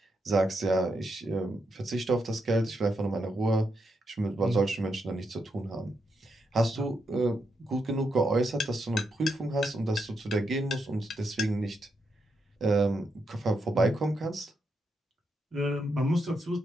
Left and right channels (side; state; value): both; normal; correlation 0.82